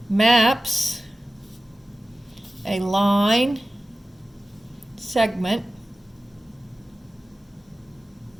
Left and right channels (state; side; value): normal; both; correlation 0.95